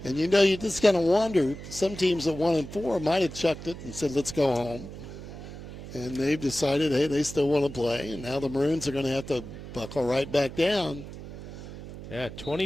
And, you know, you just kind of wonder, some teams at 1-4 might have chucked it and said, let's go home. And they've decided, hey, they still want to play. And now the Maroons are going to have to buckle right back down. Yeah,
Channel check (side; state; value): right; noise; hum, 12 dB below the sound